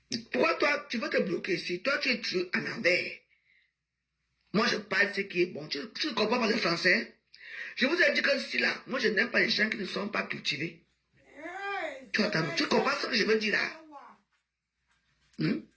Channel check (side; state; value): both; identical; correlation 1.00